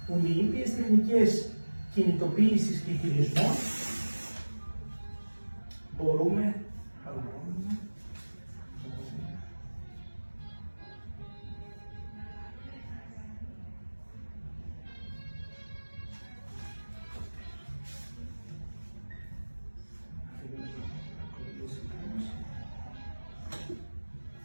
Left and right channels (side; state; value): both; inverted; correlation -1.00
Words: που με ήπιες τεχνικές κινητοποίησης και χειρισμών μπορούμε